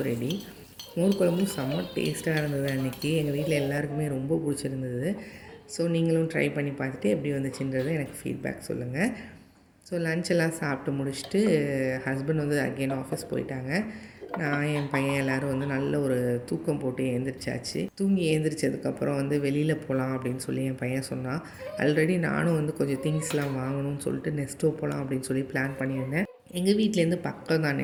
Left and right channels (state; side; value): identical; both; correlation 1.00